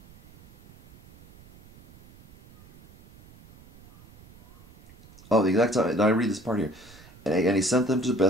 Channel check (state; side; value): noise; right; rumble, 24 dB below the sound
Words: Oh, the exact time. I read this part here. And he sent them to